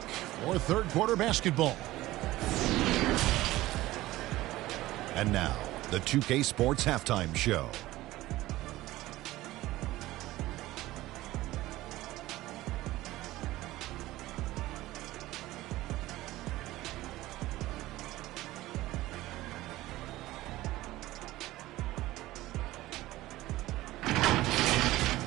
for third quarter basketball. And now, the 2K Sports Halftime Show.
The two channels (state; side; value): quieter; left; 17.0 dB